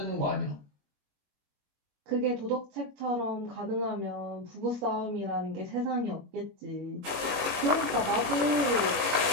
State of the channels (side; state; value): left; late; 21 ms